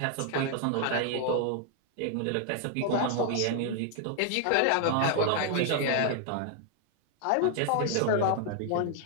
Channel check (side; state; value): both; different; correlation 0.00